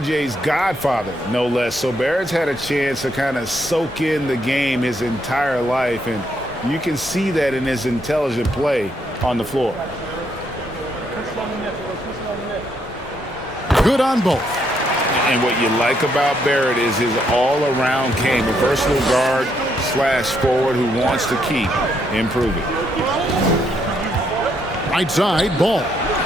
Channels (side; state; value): both; normal; correlation 0.74